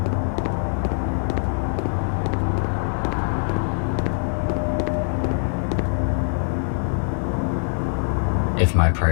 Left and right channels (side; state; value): right; silent; digital silence